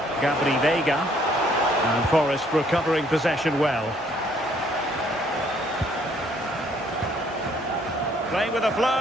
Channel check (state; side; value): normal; both; correlation 0.64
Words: Gabri Vega. And Forest recovering possession well. Playing with a